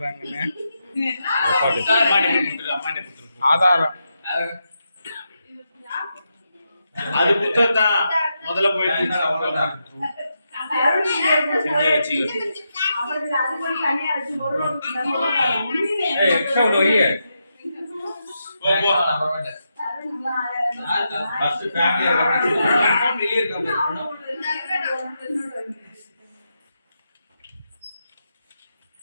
ஆதாரம். அது புத்தகம் தான் முதல்ல போயிட்டு எக்ஸ்ட்ரா ஒன்று வையே. ஃபர்ஸ்ட் ஃபேமிலியா வெளிய இருக்காங்க.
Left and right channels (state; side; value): inverted; both; correlation -0.85